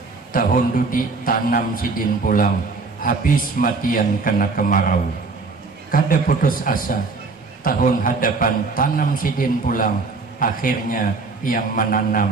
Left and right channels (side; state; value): left; quieter; 4.1 dB